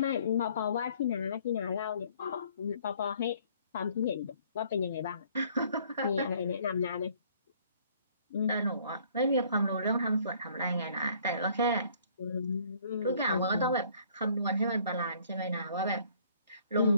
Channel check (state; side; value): inverted; both; correlation -0.59